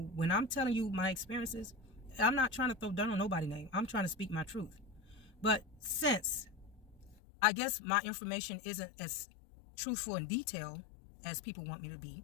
when I'm telling you my experiences, I'm not trying to throw dirt on nobody's name. I'm trying to speak my truth. But since I guess my information isn't as truthful and detailed as people want me to be,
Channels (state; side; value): drops out; right; at 7.2 s